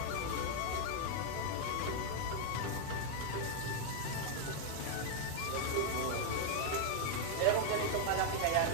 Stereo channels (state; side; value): different; both; correlation 0.00